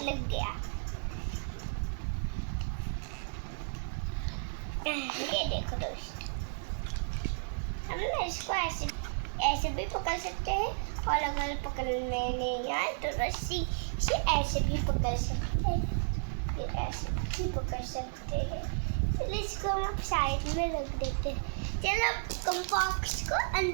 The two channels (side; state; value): left; silent; digital silence